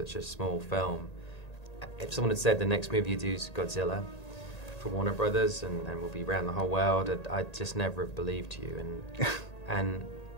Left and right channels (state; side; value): late; right; 1.8 ms